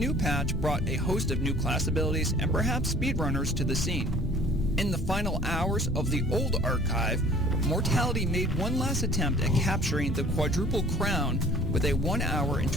patch brought a host of new class abilities and perhaps speedrunners to the scene. In the final hours of the old archive, Mortality made one last attempt at capturing the quadruple crown with a 1 hour and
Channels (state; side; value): normal; both; correlation 0.52